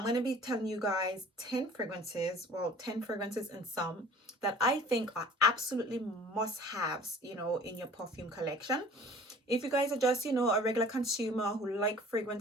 going to be telling you guys 10 fragrances, well, 10 fragrances and some that I think are absolutely must-haves, in your perfume collection. If you guys are just, a regular consumer who like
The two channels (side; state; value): both; normal; correlation 0.47